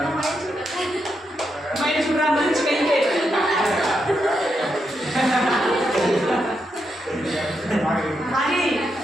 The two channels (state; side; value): normal; both; correlation 0.83